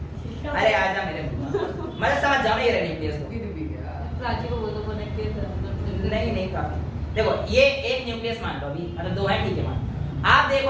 अरे आजा मेरे मतलब समझ जाओ ये न्यूक्लियस को। प्राची को बोलो नहीं नहीं काफी। देखो ये एक न्यूक्लियस मान लो, अभी मतलब दो है, ठीक है मान। आप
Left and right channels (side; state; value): both; identical; correlation 1.00